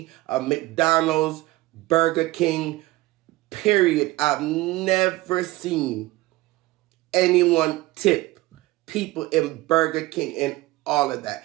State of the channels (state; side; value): quieter; left; 19.1 dB